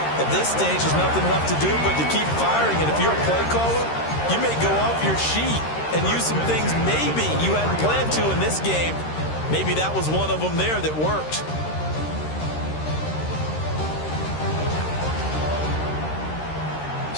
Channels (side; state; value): right; late; 13 ms